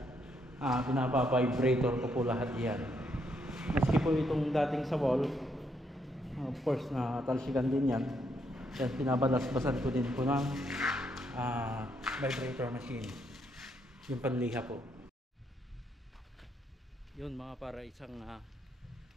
pinapa-vibrator ko po lahat yan. Maski po itong dating sa wall, of course na talsikan din yan. Yan, pinabalas-basan ko din po ng vibrator machine, yung panliha po. Yun mga para isang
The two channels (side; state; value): both; normal; correlation 0.75